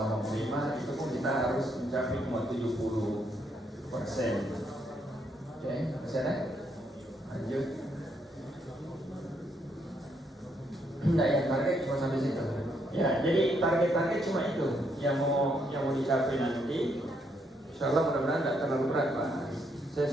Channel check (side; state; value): both; normal; correlation 0.75